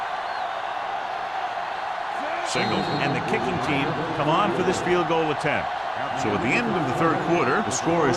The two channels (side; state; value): both; identical; correlation 1.00